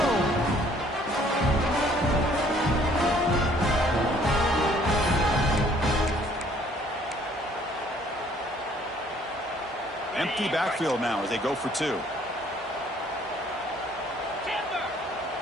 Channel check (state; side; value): normal; both; correlation 0.60